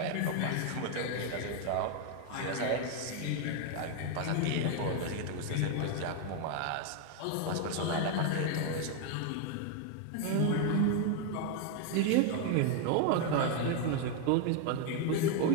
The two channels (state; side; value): different; both; correlation 0.01